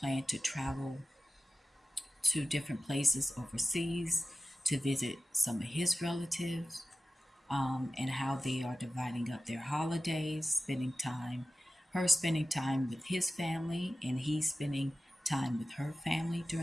to travel to different places overseas to visit some of his relatives, and how they are dividing up their holidays, her spending time with his family, and he spending time with her family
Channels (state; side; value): normal; both; correlation 0.94